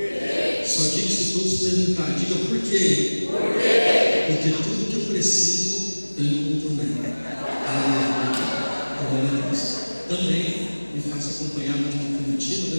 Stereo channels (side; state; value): both; inverted; correlation -1.00